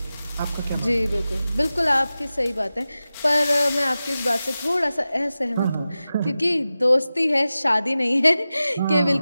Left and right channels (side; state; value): both; inverted; correlation -0.95